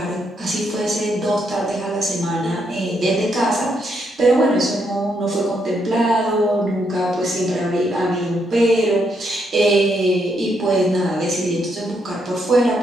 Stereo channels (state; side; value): normal; both; correlation 0.77